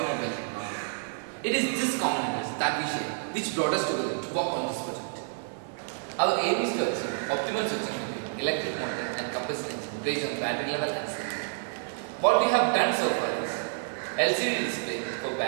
technology. It is this common interest that we share which brought us together to work on this project. Our aim is to achieve optimal switching between electric motor and combustion engine based on battery level and speed. What we have done so far is LCD display for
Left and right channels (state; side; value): silent; left; 59 dB below the other